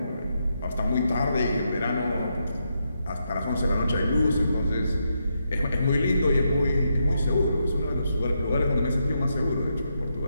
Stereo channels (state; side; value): inverted; both; correlation -0.82